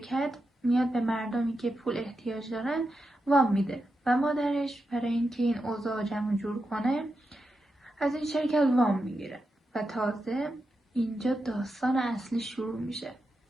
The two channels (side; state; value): both; normal; correlation 0.88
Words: میاد به مردمی که پول احتیاج دارن وام میده و مادرش برای اینکه این اوضاع جمع جور کنه از این شرکت وام میگیره و تازه اینجا داستان اصلی شروع میشه.